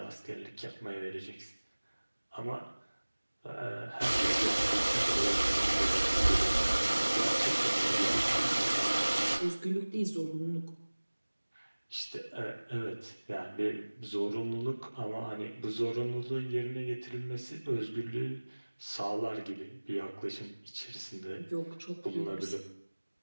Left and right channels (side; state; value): both; inverted; correlation -1.00